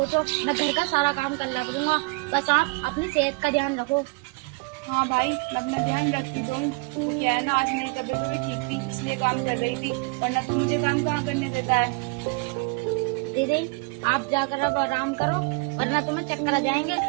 मैं घर का सारा काम कर लिया करूँगा। बस आप अपनी सेहत का ध्यान रखो। हाँ भाई, मैं अपना ध्यान रखती तो हूँ। तो क्या है ना, आज मेरी तबीयत थोड़ी ठीक थी, इसलिए काम कर रही थी, वरना तू मुझे काम कहाँ करने देता है। दीदी, आप जाकर अब आराम करो, वरना तुम्हें चक्कर आ जाएंगे।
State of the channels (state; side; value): quieter; left; 29.7 dB